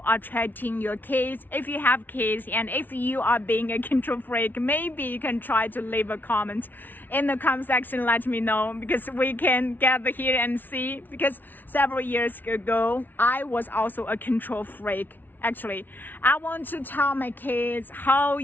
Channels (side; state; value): right; late; 0.087 ms